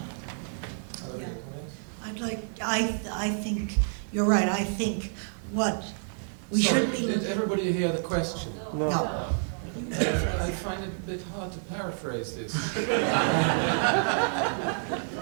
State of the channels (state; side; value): silent; left; digital silence